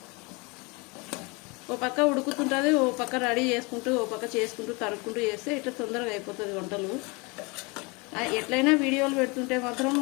ఓ పక్క ఉడుకుతుంటుంది, ఓ పక్క రెడీ చేసుకుంటూ ఓ పక్క చేసుకుంటూ తరుక్కుంటూ చేస్తే ఇట్లా తొందరగా అయిపోతుంది వంటలు. ఎట్లయినా వీడియోలు పెడుతుంటే మాత్రం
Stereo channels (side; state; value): right; quieter; 28.2 dB